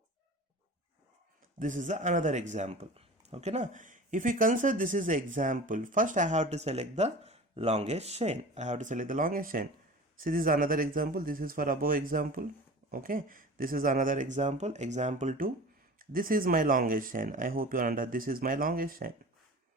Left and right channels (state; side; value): normal; both; correlation 0.37